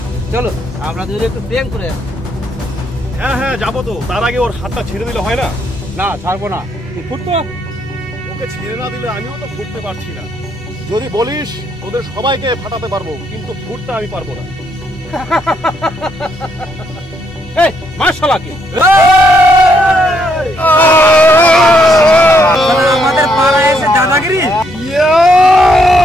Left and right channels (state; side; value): normal; both; correlation 0.73